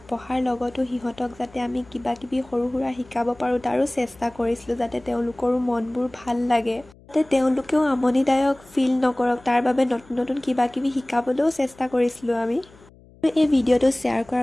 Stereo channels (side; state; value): left; noise; hum, 26 dB below the sound